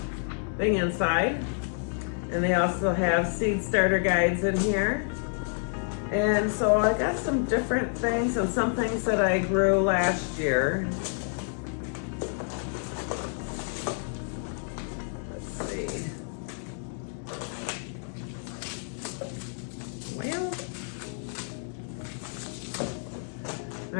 thing inside, and they also have seed starter guides in here. And so I got some different things and some things that I grew last year. Let's see.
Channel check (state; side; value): silent; right; 59 dB below the other